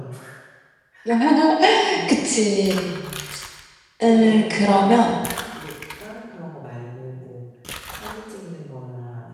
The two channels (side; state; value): both; identical; correlation 1.00